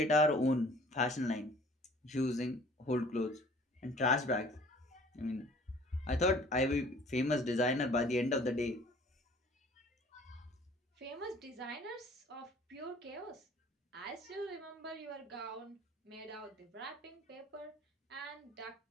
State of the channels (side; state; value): both; normal; correlation 0.52